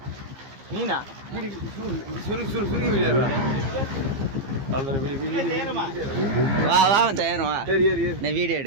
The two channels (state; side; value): late; left; 15 ms